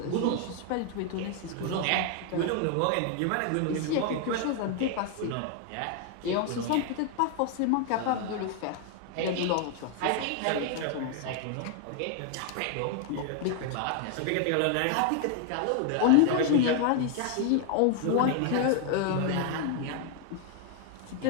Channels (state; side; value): different; both; correlation 0.00